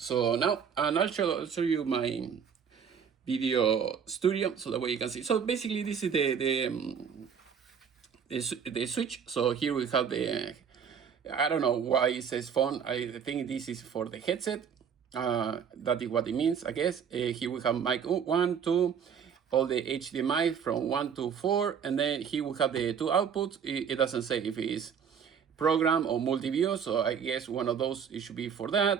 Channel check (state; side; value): quieter; left; 7.2 dB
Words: now, and I'll show you my video studio, so that way you can see. So basically this is the switch. So here we have the, I don't know why it says phone. I think this is for the headset. That is what it means, I guess. Here we have mic 1, 2, all the HDMI from 1 to 4, and then here we have the two outputs. It doesn't say if it is program or multi-view, so I guess one of those it should be for